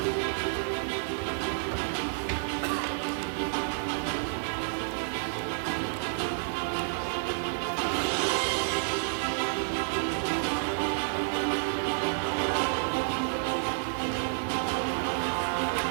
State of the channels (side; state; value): left; silent; digital silence